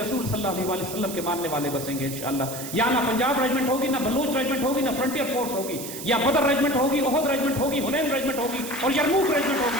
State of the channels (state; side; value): noise; right; hiss, 9 dB below the sound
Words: صلی اللہ علیہ وسلم کے ماننے والے بسیں گے انشاءاللہ. یہاں نہ پنجاب ریجمنٹ ہوگی، نہ بلوچ ریجمنٹ ہوگی، نہ فرنٹیئر فورس ہوگی. یا بدر ریجمنٹ ہوگی، احد ریجمنٹ ہوگی، حنین ریجمنٹ ہوگی اور یرموک ریجمنٹ